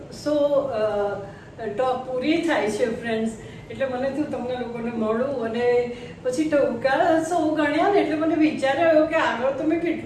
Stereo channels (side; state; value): both; identical; correlation 1.00